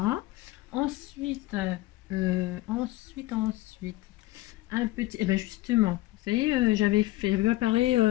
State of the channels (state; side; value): quieter; right; 17.9 dB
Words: Ensuite, un petit... Eh ben justement, vous savez, j'avais préparé